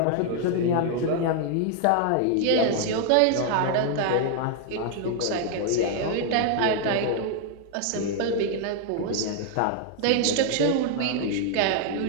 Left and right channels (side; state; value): both; different; correlation 0.00